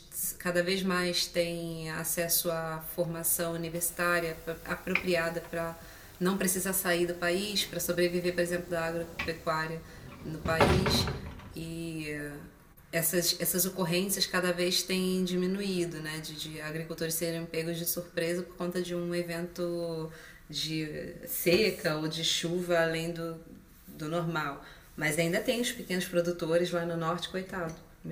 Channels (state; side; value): identical; both; correlation 1.00